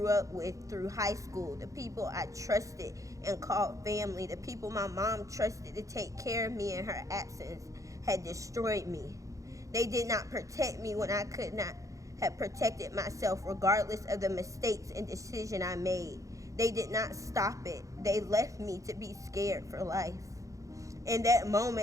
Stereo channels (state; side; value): late; left; 0.16 ms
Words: up with through high school, the people I trusted and called family, the people my mom trusted to take care of me in her absence, had destroyed me. They did not protect me when I could not have protected myself, regardless of the mistakes and decision I made. They did not stop it. They left me to be scared for life. In that